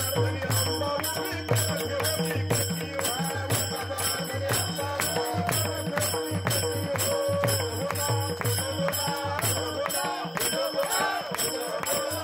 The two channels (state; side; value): identical; both; correlation 1.00